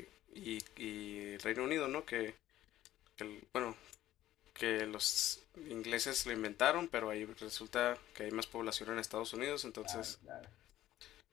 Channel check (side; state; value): right; quieter; 13.9 dB